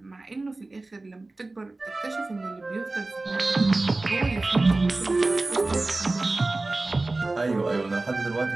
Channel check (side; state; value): left; quieter; 3.1 dB